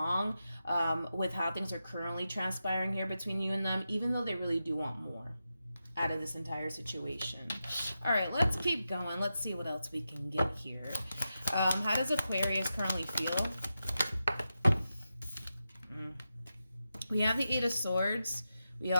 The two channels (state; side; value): inverted; both; correlation -0.89